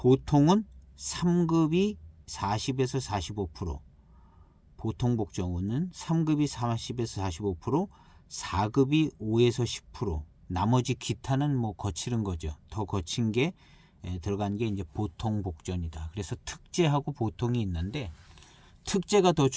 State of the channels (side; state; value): both; identical; correlation 1.00